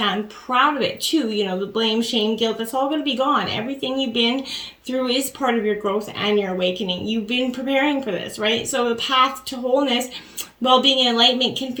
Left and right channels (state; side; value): identical; both; correlation 1.00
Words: proud of it too. The blame, shame, guilt, that's all going to be gone. Everything you've been through is part of your growth and your awakening. You've been preparing for this, right? So the path to wholeness, well-being, and enlightenment can